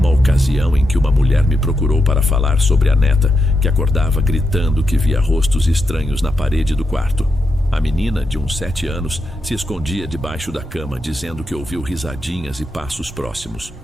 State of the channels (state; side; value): normal; both; correlation 0.85